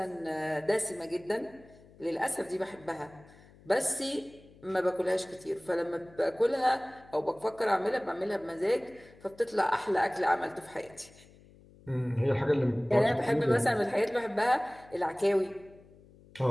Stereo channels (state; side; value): noise; left; hum, 25 dB below the sound